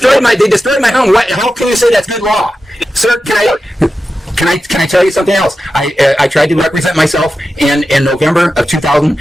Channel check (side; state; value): both; normal; correlation 0.92